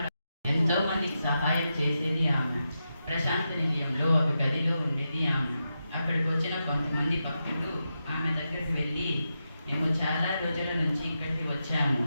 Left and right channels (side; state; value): both; inverted; correlation -0.88